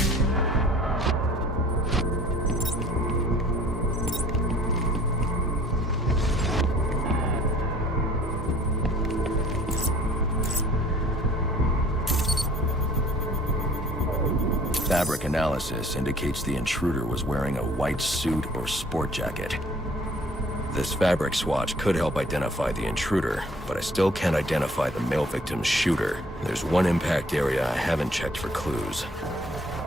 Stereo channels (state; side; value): normal; both; correlation 0.53